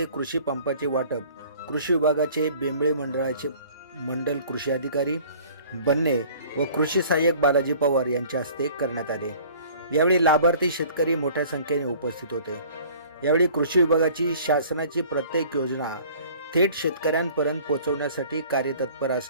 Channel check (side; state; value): both; inverted; correlation -0.50